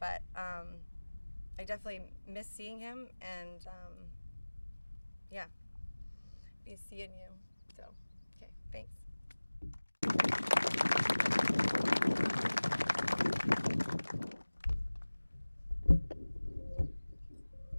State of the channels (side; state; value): both; inverted; correlation -1.00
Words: I definitely miss seeing him, and yeah, be seeing you. So, okay, thanks.